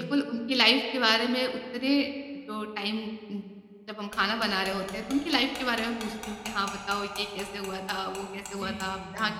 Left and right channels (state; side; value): identical; both; correlation 1.00